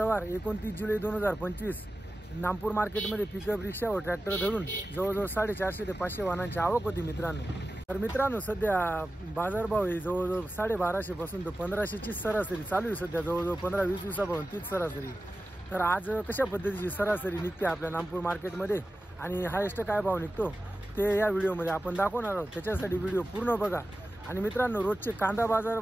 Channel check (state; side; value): normal; both; correlation 0.94